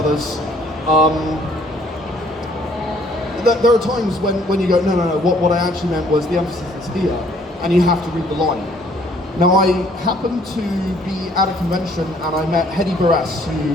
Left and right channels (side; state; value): both; normal; correlation 0.61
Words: There are times when you go, no, what I actually meant was the emphasis is here, and you have to read the line. Now, I happened to be at a convention and I met Hedy Barres,